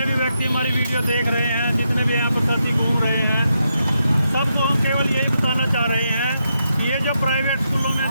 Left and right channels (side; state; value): both; inverted; correlation -0.83